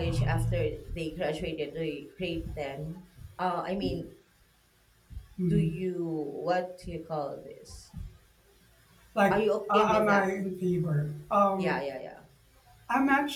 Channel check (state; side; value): identical; both; correlation 1.00